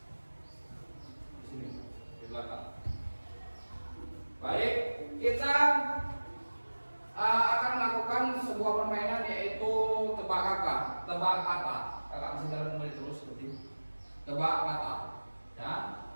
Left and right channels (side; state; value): both; inverted; correlation -1.00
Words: Di sini, di belakang. Baik, kita akan melakukan sebuah permainan yaitu tebak kata. Kakak bisa jalan kembali terus seperti tebak kata. Ya,